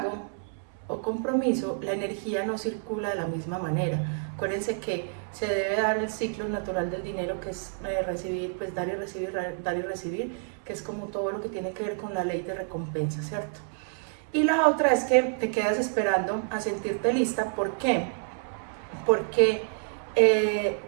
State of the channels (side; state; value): left; silent; 59 dB below the other